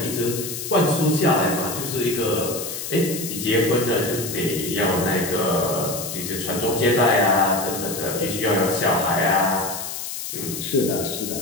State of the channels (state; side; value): noise; left; hiss, 6 dB below the sound